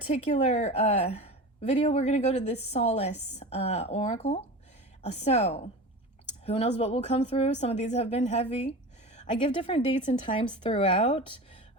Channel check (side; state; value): both; normal; correlation 0.31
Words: video, we're going to go to this Solace Oracle. So who knows what will come through? Some of these have been heavy. I give different dates and times throughout